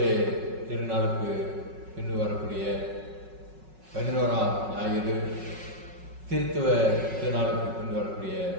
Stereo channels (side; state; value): left; late; 5.4 ms